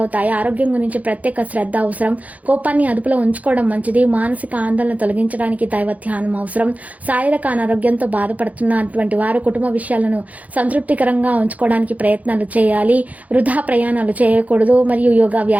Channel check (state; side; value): late; left; 0.073 ms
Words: ఆరోగ్యం గురించి ప్రత్యేక శ్రద్ధ అవసరం. కోపాన్ని అదుపులో ఉంచుకోవడం మంచిది. మానసిక ఆందోళన తొలగించడానికి దైవ ధ్యానం అవసరం. శారీరక అనారోగ్యంతో బాధపడుతున్నటువంటి వారు కుటుంబ విషయాలను సంతృప్తికరంగా ఉంచుకోవడానికి ప్రయత్నాలు చేయాలి. వృధా ప్రయాణాలు చేయకూడదు. మరియు యోగా